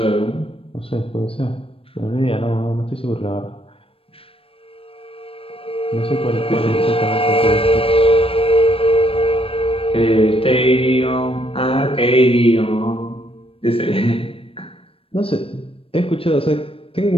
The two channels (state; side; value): late; right; 0.27 ms